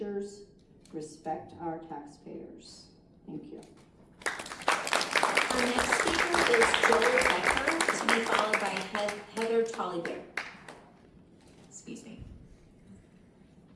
respect our taxpayers. Thank you. Our next speaker is Joel Becker, to be followed by Heather Tollybear. Excuse me.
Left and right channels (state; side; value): identical; both; correlation 1.00